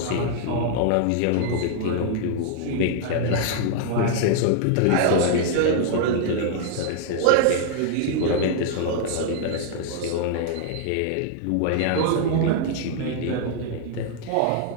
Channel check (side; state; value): both; different; correlation -0.01